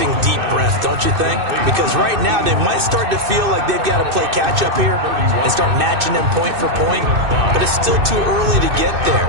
deep breath, don't you think? Because right now they might start to feel like they've got to play catch-up here and start matching them point for point. But it's still too early to get there.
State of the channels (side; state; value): left; late; 2.6 ms